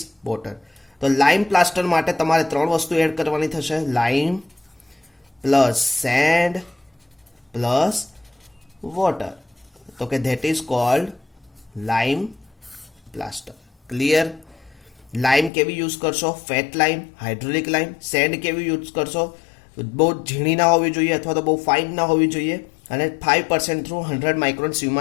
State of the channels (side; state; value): right; drops out; at 15.5 s